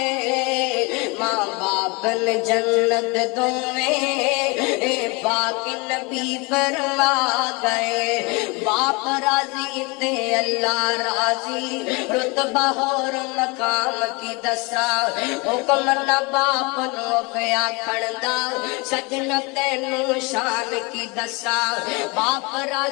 ماں باپ نے جنت دوئے پاک نبی فرما گئے باپ راضی تے اللہ راضی رتبہ اور مقام کی دسا حکم نہ باپ نو پیا کھڑدا سجن تینو شان کی دسا باپ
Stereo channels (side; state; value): right; quieter; 27.6 dB